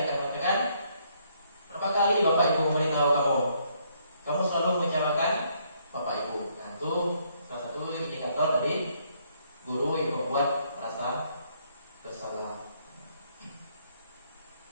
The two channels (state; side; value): inverted; both; correlation -0.70